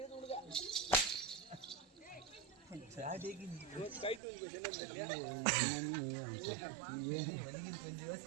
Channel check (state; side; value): drops out; left; at 4.2 s